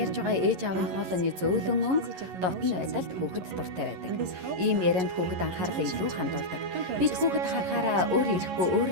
ярьж байгаа ээж аавын хоолойны зөөлөн өнгө дотн байдалд хүүхэд дуртай байдаг. Ийм ярианд хүүхэд анхаарлаа илүү хандуулдаг. Бид хүүхэд харахаараа өөр ирэхгүй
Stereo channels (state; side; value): late; left; 11 ms